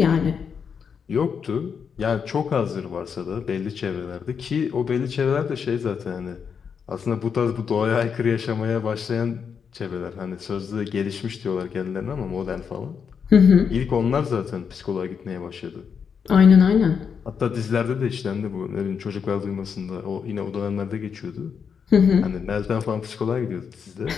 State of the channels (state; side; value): quieter; right; 6.6 dB